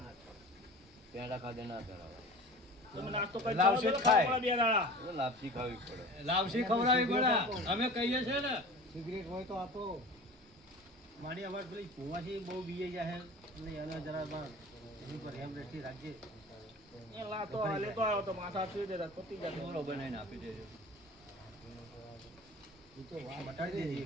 પેડા ખાધે ના કરાવે. તમે નાસ્તો કરી લાવશે ચાલો, ખાય. ખાવા પડે બે દાડા. એટલે લાપસી ખાવી પડે. લાવશી ખવડાવી પડે. અમે કહીએ છીએ ને. સિગરેટ હોય તો આપો. મારી અવાજ પેલી ભૂવાથી બહુ બીએ ગયા છે એટલે એને જરા બાર એની પર હેમ રેઠી રાખજે. એ લાતો લેતો આવ્યો તો માથા સુઈ દેતા પતી જતો. બોલો બનાવીને આપી દેજો. મટાડી દેજે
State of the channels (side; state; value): both; normal; correlation 0.39